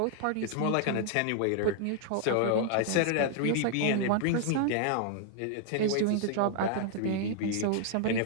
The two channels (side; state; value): both; different; correlation 0.00